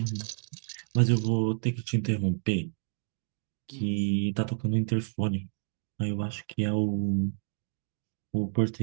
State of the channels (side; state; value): left; silent; digital silence